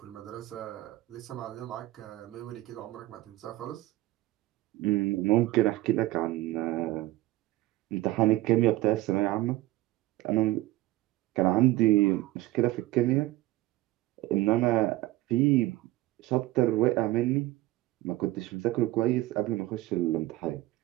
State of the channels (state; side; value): quieter; left; 17.4 dB